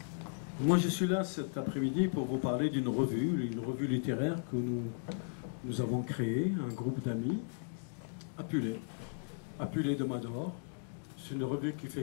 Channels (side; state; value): right; silent; digital silence